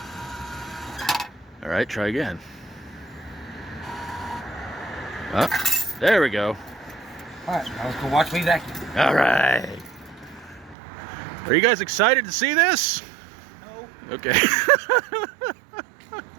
All right, try again. Oh, there we go. All right, now let's go watch me vacuum. All right. Are you guys excited to see this? No. Okay.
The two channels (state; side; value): drops out; left; at 10.8 s